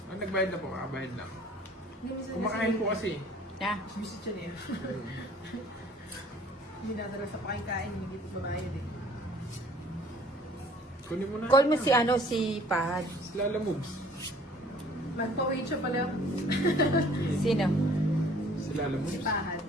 Nagbayad na po. Bayad lang. Kumakain po kasi. Na. Visit siya niya. Hindi natara sa pakikain, hindi ko babayad eh. Kunin mo na. Call mo si ano, si Pahad. Si Lala moves. Magpa-wait siya pala. Sino? Si Lala Si moves. Pahad.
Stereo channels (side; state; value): both; normal; correlation 0.54